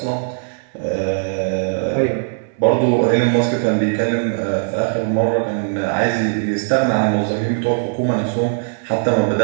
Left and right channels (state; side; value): silent; left; digital silence